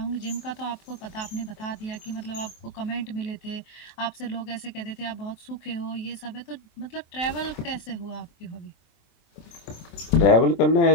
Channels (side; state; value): right; late; 23 ms